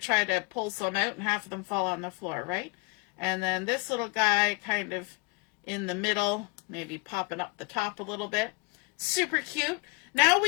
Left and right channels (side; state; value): right; quieter; 29.6 dB